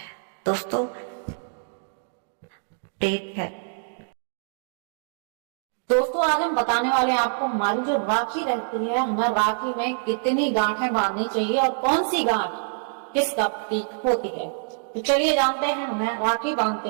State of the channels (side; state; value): left; silent; 62 dB below the other